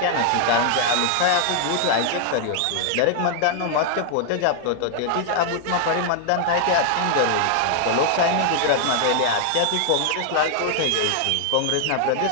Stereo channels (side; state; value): both; different; correlation 0.00